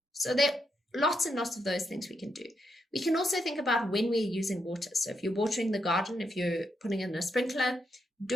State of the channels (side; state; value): both; normal; correlation 0.81